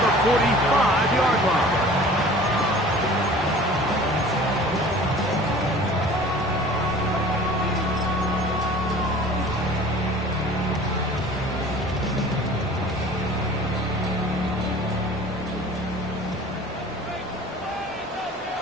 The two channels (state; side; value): normal; both; correlation 0.45